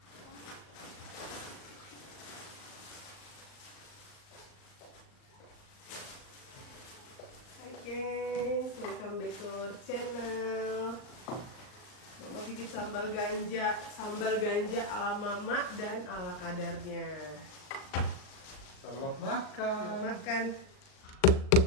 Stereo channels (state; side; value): late; right; 39 ms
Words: Hai gengs, welcome back to our channel. Mama bikin sambal ganja ala mama dan ala kadarnya. Selamat makan. Selamat makan.